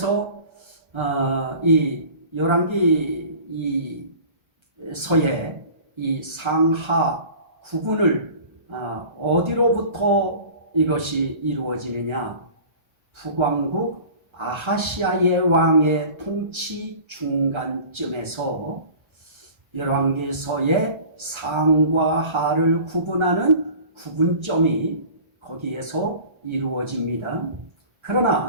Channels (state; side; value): late; left; 1.3 ms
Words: 이 열왕기서의 이 상하 구분을 어디로부터 이것이 이루어지느냐, 북왕국 아하시아의 왕의 통치 중간쯤에서 열왕기서의 상과 하를 구분하는 구분점이 거기에서 이루어집니다.